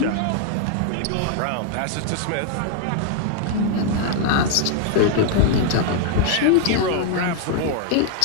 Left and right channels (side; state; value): both; different; correlation -0.01